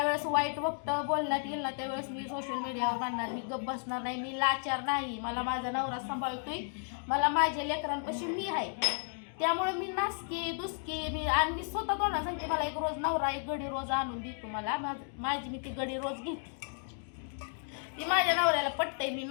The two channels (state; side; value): silent; right; 56 dB below the other